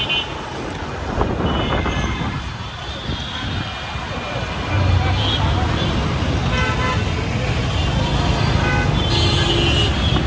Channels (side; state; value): both; identical; correlation 1.00